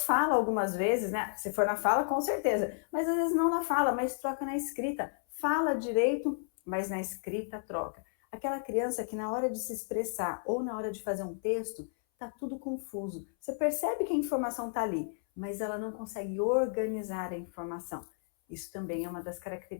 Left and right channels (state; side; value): silent; right; 56 dB below the other